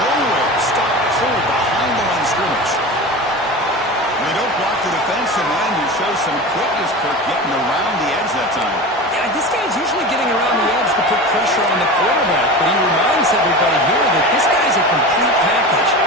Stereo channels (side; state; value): both; normal; correlation 0.30